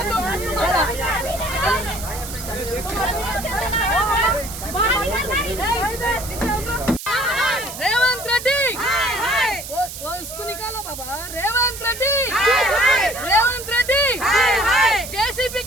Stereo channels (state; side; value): noise; right; hiss, 10 dB below the sound